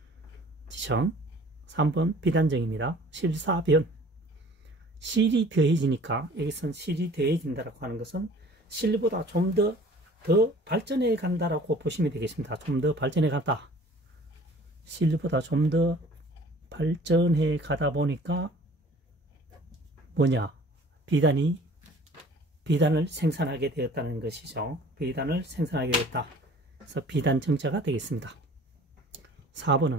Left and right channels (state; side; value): normal; both; correlation 0.49